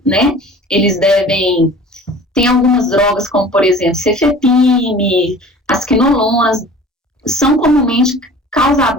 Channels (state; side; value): normal; both; correlation 0.44